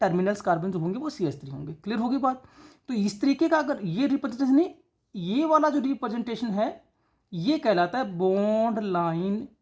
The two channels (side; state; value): both; identical; correlation 1.00